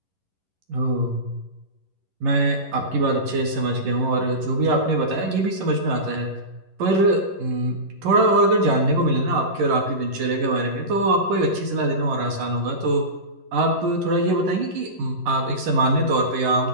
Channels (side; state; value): left; late; 11 ms